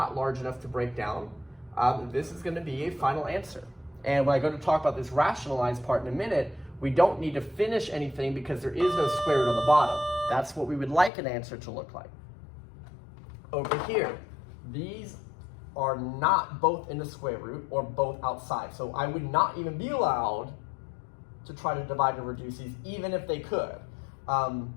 large enough to break down. This is going to be a final answer. And when I go to talk about this rationalized part in a minute, we don't need to finish anything because there is no square root on the bottom. That's what we would like an answer to look like. Over here, these are not both in the square root or both outside. So I would not even be allowed to try to divide and reduce these, even if they could.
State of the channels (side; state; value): right; drops out; at 11.1 s